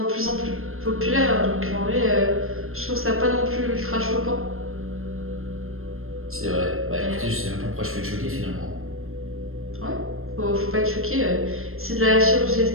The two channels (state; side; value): late; left; 0.61 ms